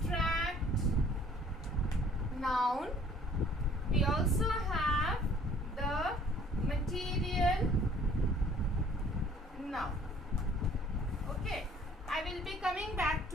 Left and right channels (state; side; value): normal; both; correlation 0.55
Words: noun. We also have the material noun. Okay. I will be coming back